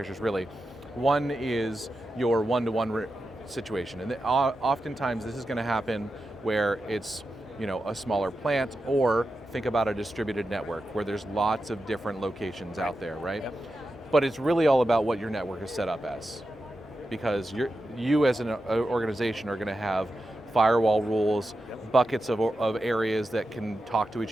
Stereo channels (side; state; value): both; normal; correlation 0.90